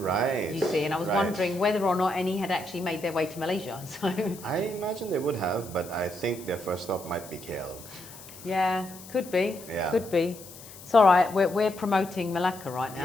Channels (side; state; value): left; noise; hiss, 17 dB below the sound